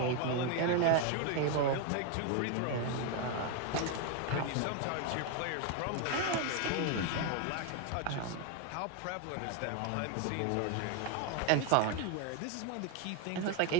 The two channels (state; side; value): different; both; correlation 0.01